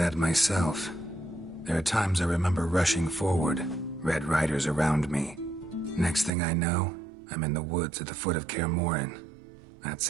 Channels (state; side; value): drops out; left; at 6.3 s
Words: myself. There are times I remember rushing forward, Red Riders around me. Next thing I know, I'm in the woods at the foot of Kaer Morhen.